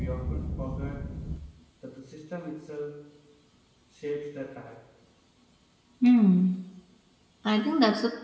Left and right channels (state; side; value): identical; both; correlation 1.00